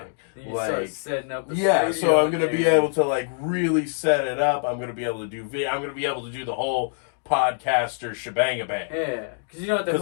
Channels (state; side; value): silent; right; digital silence